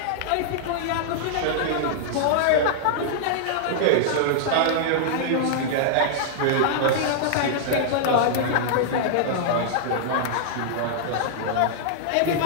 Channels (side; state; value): both; different; correlation -0.01